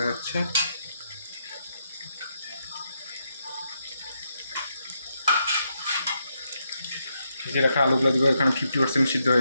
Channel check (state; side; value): inverted; both; correlation -0.80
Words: যাচ্ছে। ভেজে রাখা আলুগুলো দেবো, এখানে 50% সিদ্ধ